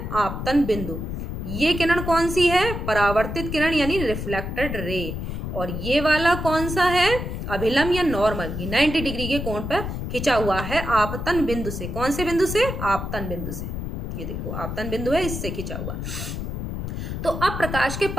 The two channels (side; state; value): left; noise; rumble, 5 dB below the sound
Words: आपतन बिंदु। ये किरण कौन सी है, परावर्तित किरण यानी रिफ्लेक्टेड रे। और ये वाला कौन सा है, अभिलंब या नॉर्मल। ये 90 डिग्री के कोण पर खिंचा हुआ है आपतन बिंदु से। कौन से बिंदु से, आपतन बिंदु से। ये देखो आपतन बिंदु है, इससे खिंचा हुआ। तो अब प्रकाश के